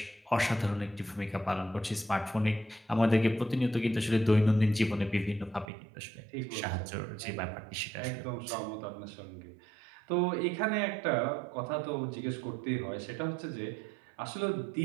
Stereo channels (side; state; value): left; drops out; at 5.7 s